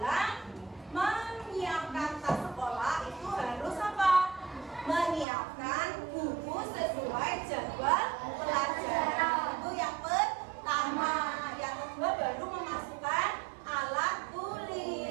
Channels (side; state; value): left; drops out; at 5.2 s